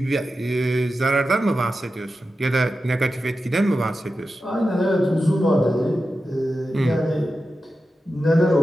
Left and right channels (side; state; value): both; normal; correlation 0.92